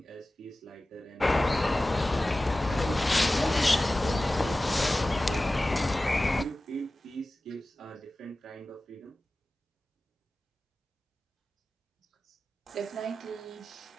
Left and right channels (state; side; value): normal; both; correlation 0.96